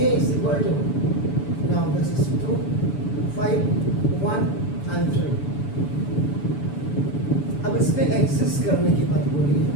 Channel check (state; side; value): late; right; 7.0 ms